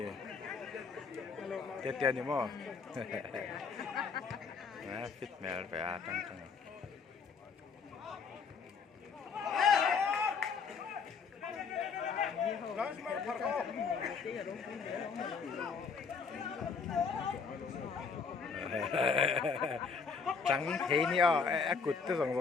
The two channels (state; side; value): quieter; right; 5.4 dB